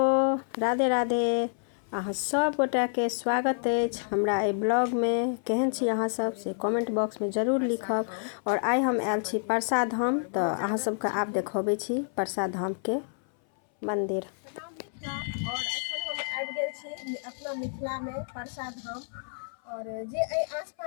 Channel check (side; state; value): right; silent; 58 dB below the other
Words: Radhe Radhe. अहाँ सब गोटा के स्वागत अछि हमरा ए ब्लॉग में। केहन छी अहाँ सब से कमेंट बॉक्स में जरूर लिखब। और आइ हम आयल छी परसा धाम, तो अहाँ सबके आब देखबै छी परसा धाम के मंदिर। और एखन हम आबि गेल छी अपना मिथिला में परसा धाम। और जे